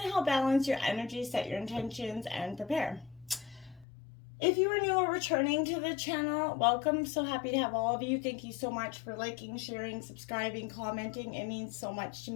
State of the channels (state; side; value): drops out; right; at 3.9 s